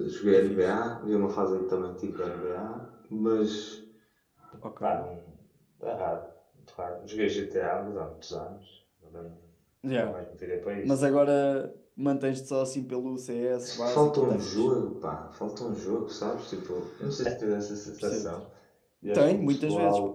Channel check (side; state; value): both; identical; correlation 1.00